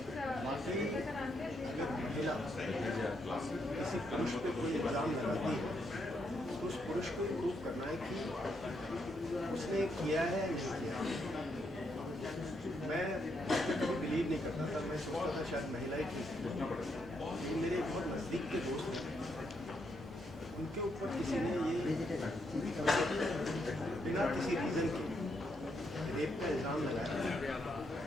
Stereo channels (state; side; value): noise; right; rumble, 25 dB below the sound